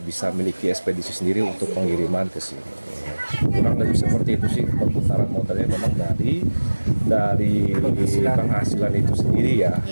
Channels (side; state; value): both; inverted; correlation -1.00